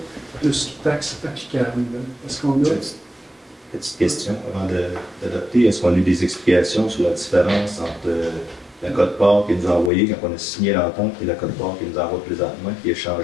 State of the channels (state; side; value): drops out; right; at 9.9 s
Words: plus taxes applicables. Est-ce qu'on a... Petite question avant d'adopter. Est-ce qu'on a eu des explications sur la différence entre la quote-part qu'il nous a envoyée quand on a signé l'entente et la quote-part qu'il nous envoie présentement, qui est